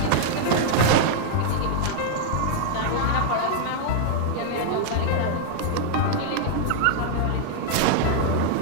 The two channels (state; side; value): different; both; correlation -0.01